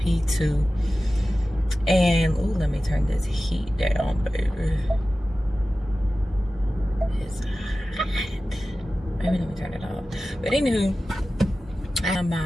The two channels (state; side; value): normal; both; correlation 0.95